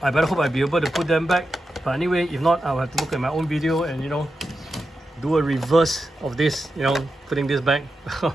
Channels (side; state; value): both; normal; correlation 0.89